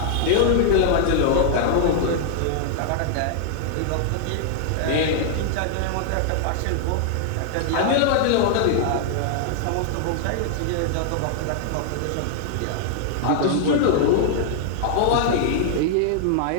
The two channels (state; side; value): different; both; correlation -0.01